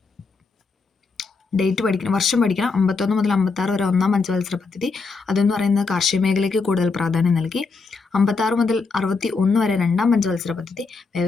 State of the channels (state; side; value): quieter; right; 4.4 dB